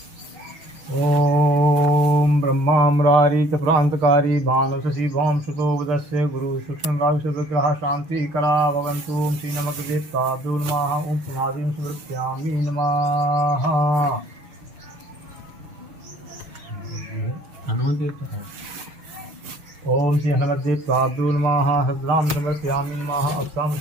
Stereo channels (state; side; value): late; left; 6.5 ms